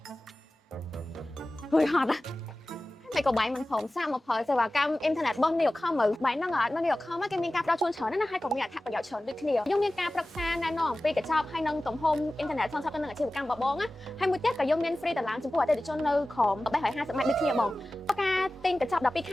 ហួយហត់តែក៏បាយមិនព្រមសាកមកផលសេវាកម្មអ៊ីនធឺណិតរបស់នេះខំមើលបាយហ្នឹងអត់នៅនេះខំគេមានការផ្ដល់ជូនច្រើនណាស់ហើយក៏មានអត្ថប្រយោជន៍ច្រើនដូចគ្នាយើងមានការប្រឹក្សាណែនាំអំពីកញ្ចប់ហើយនឹងទំហំអ៊ីនធឺណិតសងសឹកទៅនឹងអាជីវកម្មរបស់បងណាហើយមួយទៀតក៏យើងមាន free តឡើងចំពោះអតិថិជននៅក្រោម350ម៉ែត្រដូចគ្នាបងការទិញកញ្ចប់12ខ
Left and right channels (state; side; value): normal; both; correlation 0.96